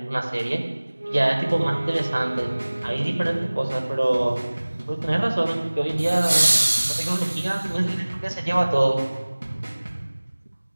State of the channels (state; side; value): inverted; both; correlation -1.00